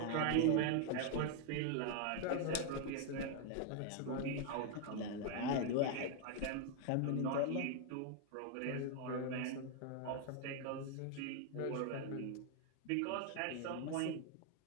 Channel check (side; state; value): both; different; correlation 0.00